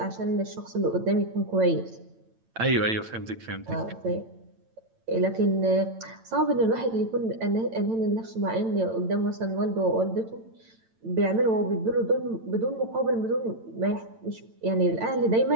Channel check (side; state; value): left; late; 8.9 ms